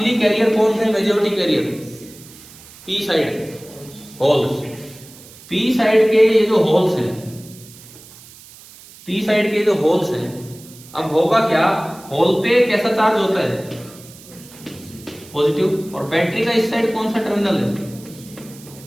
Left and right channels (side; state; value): right; noise; hiss, 20 dB below the sound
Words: कैरियर कौन थे? Majority carrier P side holes, P side के ये जो होल्स हैं, पी साइड के जो होल्स हैं, अब होगा क्या, होल पे कैसा चार्ज होता है? पॉजिटिव, और बैटरी का इस साइड कौन सा टर्मिनल है?